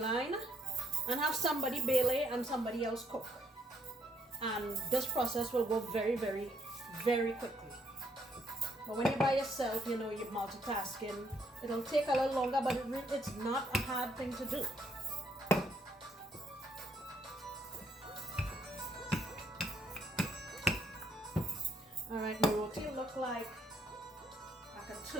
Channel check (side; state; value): both; normal; correlation 0.70